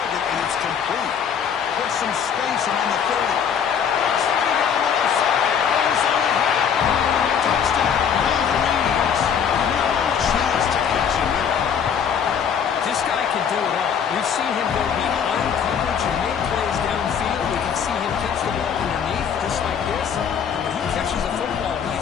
and it's complete. Put some space around the 30. Swing down the left side. Touchdown, Wolverines. No chance to catch him there. This guy can do it all. We've seen him go behind coverage and make plays downfield. We can see him catch the ball underneath, just like this. When he catches a football,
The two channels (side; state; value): right; quieter; 7.6 dB